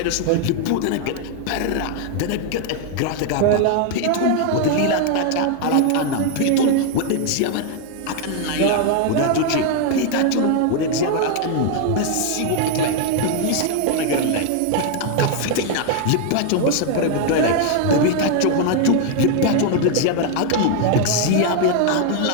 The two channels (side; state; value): both; different; correlation 0.00